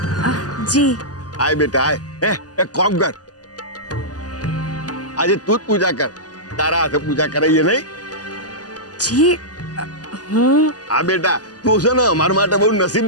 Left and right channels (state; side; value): late; right; 0.68 ms